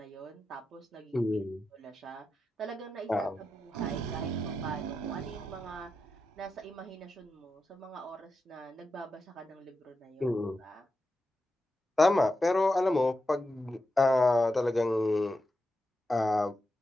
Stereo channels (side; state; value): both; normal; correlation 0.89